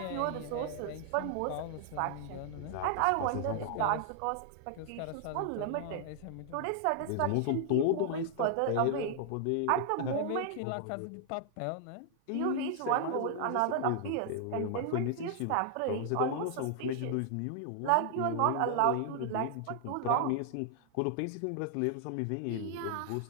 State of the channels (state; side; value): different; both; correlation 0.00